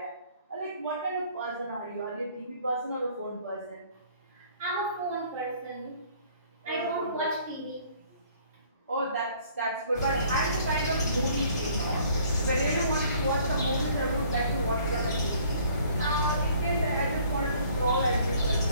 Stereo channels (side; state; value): both; inverted; correlation -0.57